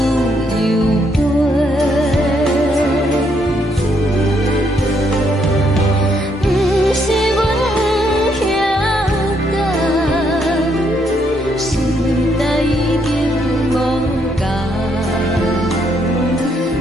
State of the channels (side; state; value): both; normal; correlation 0.73